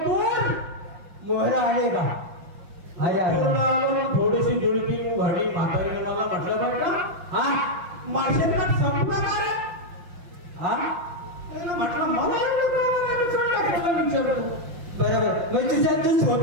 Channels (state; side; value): late; left; 5.7 ms